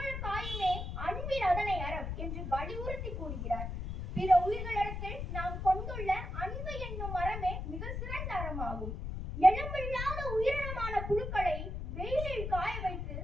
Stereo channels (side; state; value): left; noise; rumble, 5 dB below the sound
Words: காயுமே அன்பில் அதனை அறம் என்று வலியுறுத்தி கூறுகிறார். பிற உயிர்களிடத்தில் நாம் கொண்டுள்ள அன்பு என்னும் அறமே மிக சிறந்த அறமாகும். எலும்பில்லாத உயிரினமான புழுக்களை வெயிலில் காய வைத்து